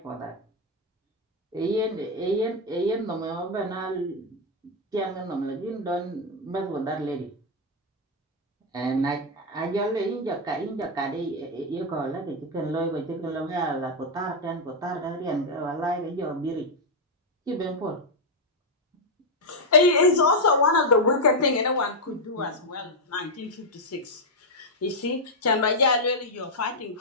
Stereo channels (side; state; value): both; normal; correlation 0.00